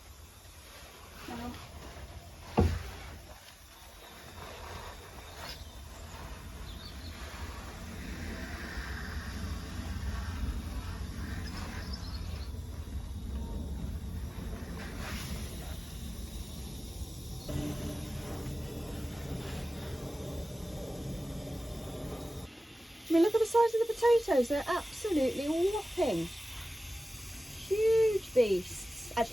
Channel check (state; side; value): normal; both; correlation 0.96